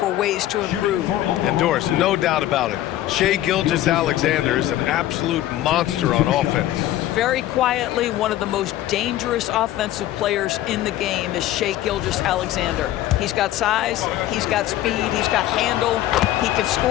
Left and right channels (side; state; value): right; quieter; 13.9 dB